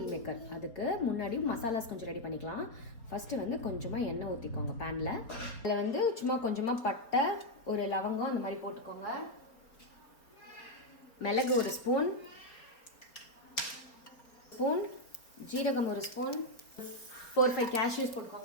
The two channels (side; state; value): right; late; 4.5 ms